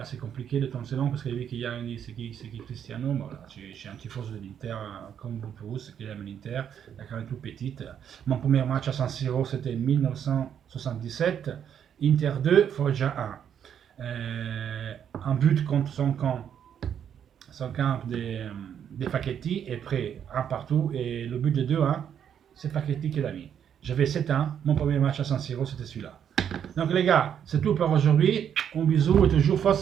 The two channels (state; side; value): quieter; left; 8.8 dB